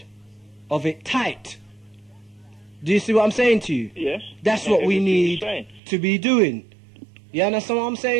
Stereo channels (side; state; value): left; drops out; at 5.8 s